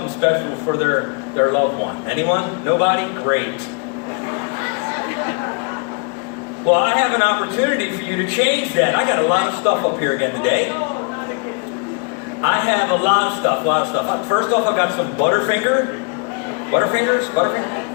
special for their loved one. Anyone? Nobody? Great. Well, I have an opportunity for you to change that. I got a lot of stuff up here again today. I have a lot of stuff. First off, I've got some Butterfingers.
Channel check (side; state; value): right; quieter; 37.3 dB